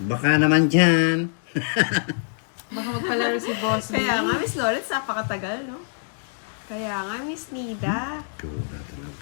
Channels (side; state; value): right; silent; digital silence